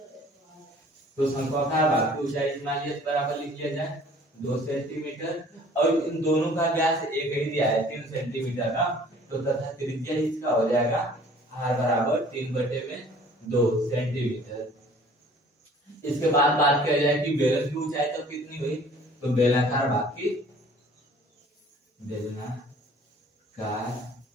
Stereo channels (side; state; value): both; normal; correlation 0.52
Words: तो शंक्वाकार भाग की ऊंचाई मान लिया बराबर लिख लिया जाए 2 सेंटीमीटर, और इन दोनों का व्यास एक ही दिया है 3 सेंटीमीटर का, तो तथा त्रिज्या इसका हो जाएगा r बराबर 3/2 सेंटीमीटर। इसके बाद बात किया जाए कि बेलन की ऊंचाई तो कितनी हुई, तो बेलनाकार भाग